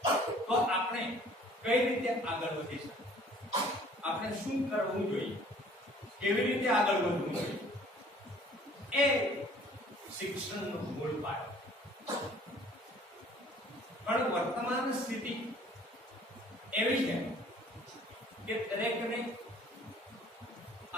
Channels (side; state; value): both; normal; correlation 0.54